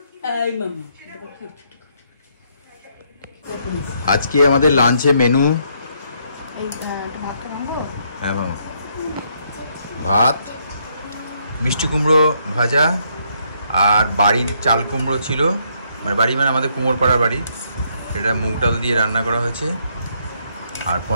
আজকে আমাদের লাঞ্চে মেনু ভাত, মিষ্টি কুমড়ো ভাজা, আর বাড়ির চাল কুমড়ো ছিল, মানে বাড়ি মানে আমাদের কুমোরপাড়ার বাড়ি, এটা মুগ ডাল দিয়ে রান্না করা হয়েছে, আর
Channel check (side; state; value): both; inverted; correlation -0.72